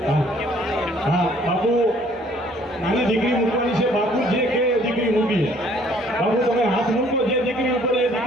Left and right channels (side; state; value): both; normal; correlation 0.59